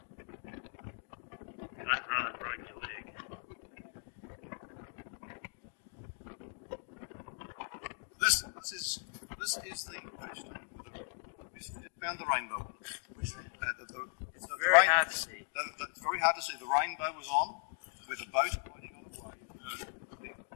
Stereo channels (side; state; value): right; silent; 52 dB below the other